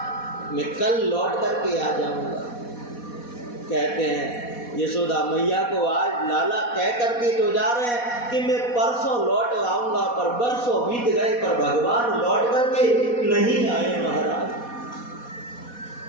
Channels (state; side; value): late; right; 4.1 ms